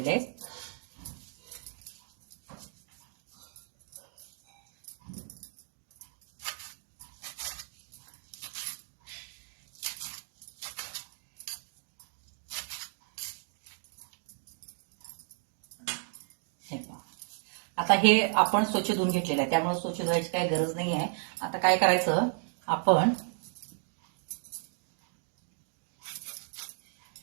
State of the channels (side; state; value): left; silent; digital silence